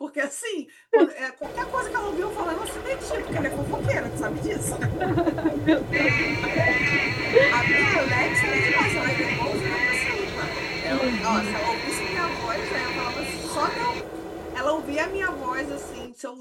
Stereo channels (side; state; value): both; identical; correlation 1.00